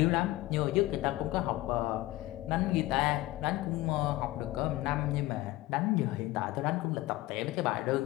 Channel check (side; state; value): right; quieter; 17.7 dB